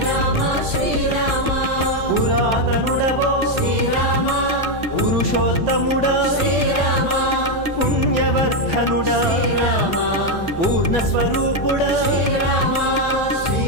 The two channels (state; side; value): late; right; 1.3 ms